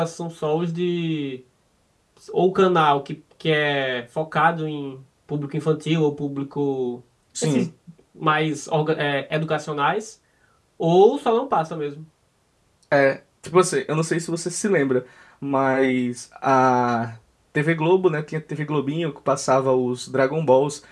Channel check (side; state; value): both; identical; correlation 1.00